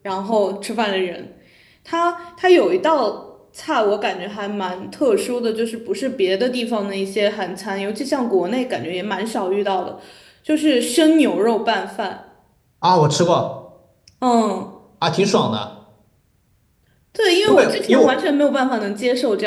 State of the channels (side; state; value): both; identical; correlation 1.00